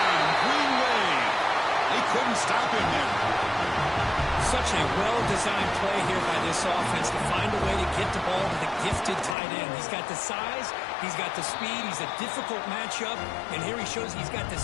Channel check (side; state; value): right; drops out; at 9.3 s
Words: Green Wave. They couldn't stop him there. Such a well-designed play here by this offense to find a way to get the ball to the gifted tight end. He's got the size, he's got the speed, he's a difficult matchup, and here he shows he's got the